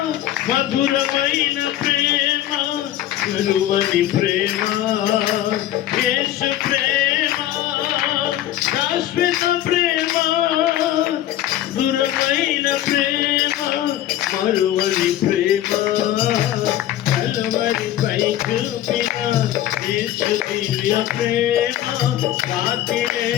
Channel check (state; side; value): quieter; right; 12.9 dB